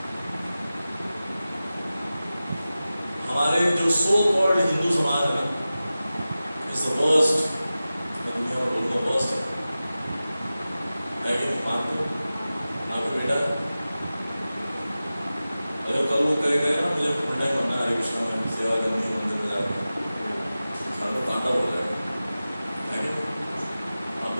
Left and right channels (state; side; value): inverted; both; correlation -0.95